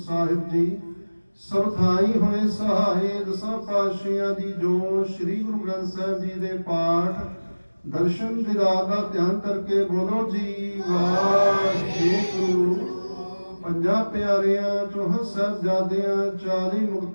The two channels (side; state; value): both; inverted; correlation -1.00